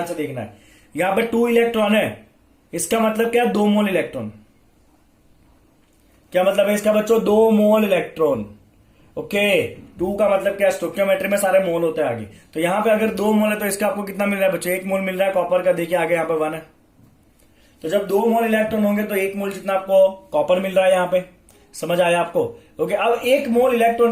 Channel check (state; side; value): identical; both; correlation 1.00